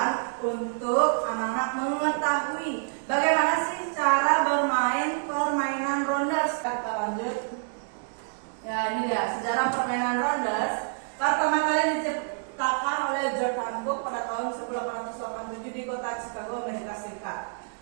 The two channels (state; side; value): silent; left; digital silence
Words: untuk anak-anak mengetahui bagaimana sih cara bermain permainan rounders. Kita lanjut. Ya, ini dia sejarah permainan rounders. Pertama kali diciptakan oleh George Hancock pada tahun 1887 di kota Chicago, Amerika Serikat.